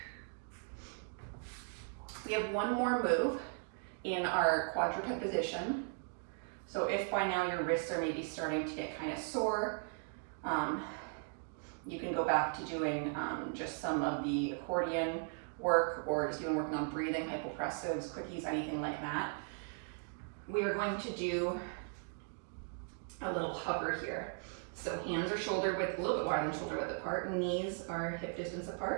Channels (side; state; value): left; silent; 53 dB below the other